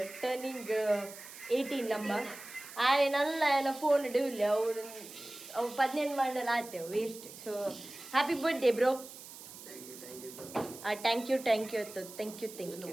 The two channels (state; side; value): noise; right; hiss, 15 dB below the sound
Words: turning 18 ನಮ್ಮ ಆಯ್ನಲ್ಲ ಏನ ಫೋನ್ ಇಡವಿಲ್ಲ ಅವು 18 ಮಾಡಲ್ಲ ಆತೇವೆ waste. So happy birthday bro. Thank you ಅತ್ತು ಥ್ಯಾಂಕ್ ಯು